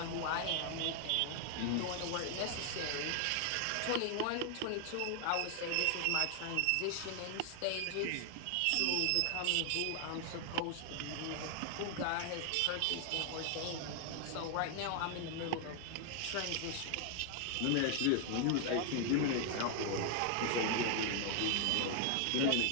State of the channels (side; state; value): both; different; correlation 0.00